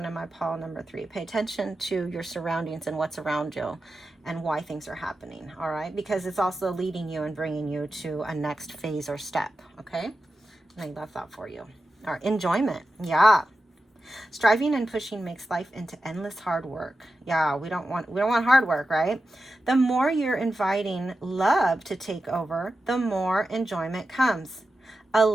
in my pile number 3. Pay attention to your surroundings and what's around you and why things are happening, all right? Because it's also leading you and bringing you to a next phase or step, okay? And I love that for you. All right, enjoyment. Yeah. Striving and pushing makes life into endless hard work. Yeah, we don't want hard work, right? The more you're inviting love to take over, the more enjoyment comes.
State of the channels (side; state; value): both; normal; correlation 0.91